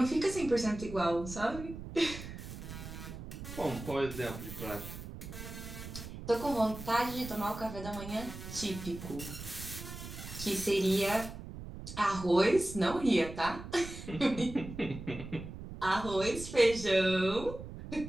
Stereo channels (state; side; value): noise; right; rumble, 11 dB below the sound